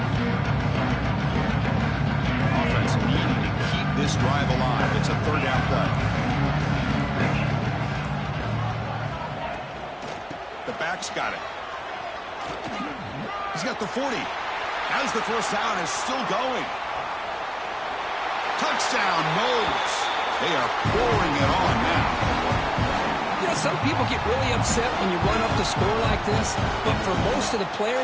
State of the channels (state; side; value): identical; both; correlation 1.00